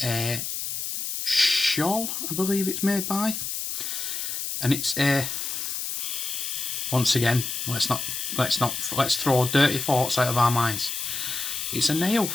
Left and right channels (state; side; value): noise; left; hiss, 4 dB below the sound